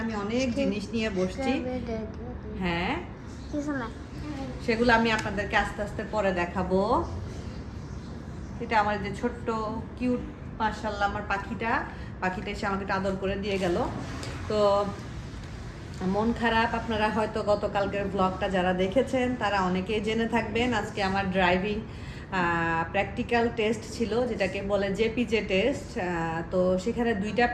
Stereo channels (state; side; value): identical; both; correlation 1.00